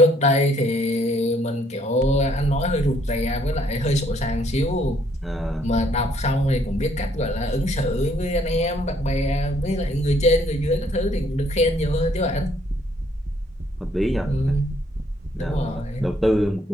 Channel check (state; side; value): normal; both; correlation 0.66